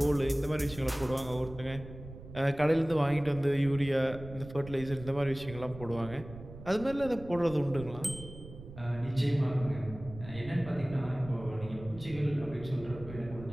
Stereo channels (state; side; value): noise; right; rumble, 14 dB below the sound